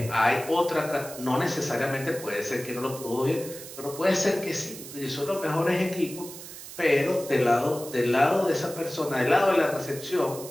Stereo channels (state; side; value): noise; right; hiss, 13 dB below the sound